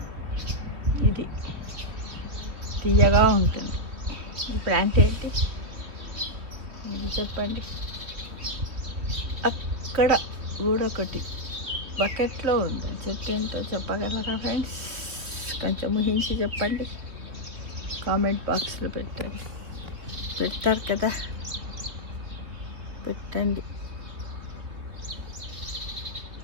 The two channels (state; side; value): late; left; 3.3 ms